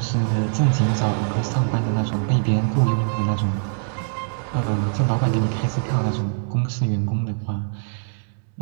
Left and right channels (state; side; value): silent; left; 64 dB below the other